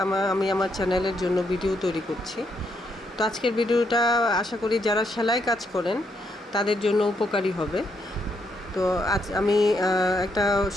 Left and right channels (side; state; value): both; normal; correlation 0.77